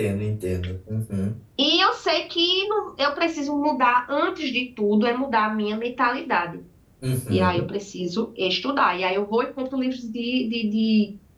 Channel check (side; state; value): both; identical; correlation 1.00